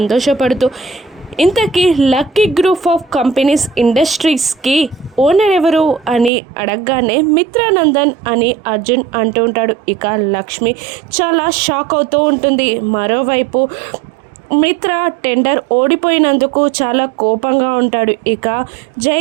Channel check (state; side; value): drops out; left; at 6.3 s